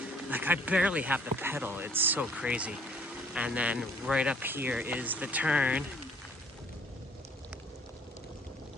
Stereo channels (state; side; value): normal; both; correlation 0.59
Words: I barely have to pedal. It's so crazy. And then right up here is the turn.